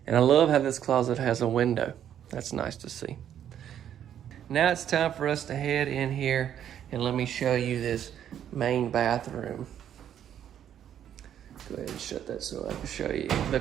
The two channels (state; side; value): quieter; left; 9.9 dB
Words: And I love how this closet has a window. That's nice to see. Now it's time for us to head in here and let me show you this main bathroom. Go ahead and shut that so I can show you the